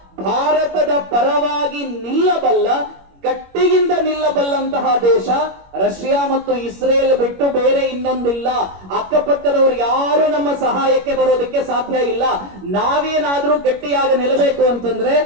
ಭಾರತದ ಪರವಾಗಿ ನಿಲ್ಲಬಲ್ಲ, ಗಟ್ಟಿಯಿಂದ ನಿಲ್ಲಬಲ್ಲಂತ ಇರುವಂತಹ ದೇಶ ರಷ್ಯಾ ಮತ್ತು ಇಸ್ರೇಲ್ ಬಿಟ್ಟು ಬೇರೆ ಇನ್ನೊಂದಿಲ್ಲ. ಅಕ್ಕಪಕ್ಕದವರು ಯಾರು ನಮ್ಮ ಸಹಾಯಕ್ಕೆ ಬರೋದಕ್ಕೆ ಸಾಧ್ಯ ಇಲ್ಲ. ನಾವೇನಾದ್ರೂ ಗಟ್ಟಿಯಾಗಿ ನಿಲ್ಲಬೇಕು ಅಂತಂದ್ರೆ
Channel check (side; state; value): left; late; 21 ms